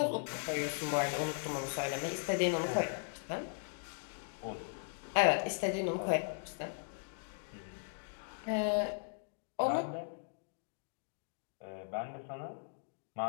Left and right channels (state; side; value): silent; right; digital silence